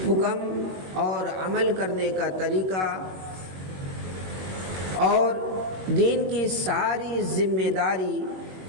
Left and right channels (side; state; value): left; late; 21 ms